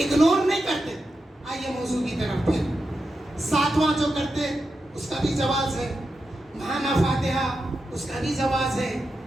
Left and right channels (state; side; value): normal; both; correlation 0.89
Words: نہیں کرتے. آئیے موضوع کی طرف. پھر 7واں جو کرتے اس کا بھی جواز ہے، ماہانہ فاتحہ اس کا بھی جواز ہے،